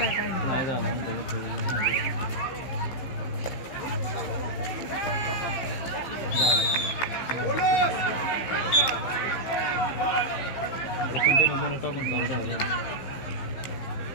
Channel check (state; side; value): late; right; 15 ms